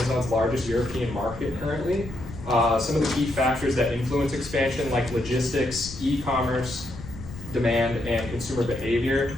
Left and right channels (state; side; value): noise; left; rumble, 13 dB below the sound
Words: largest European market currently. Some of the key factors that influence expansion, like logistics, e-commerce, demand, and consumer behavior.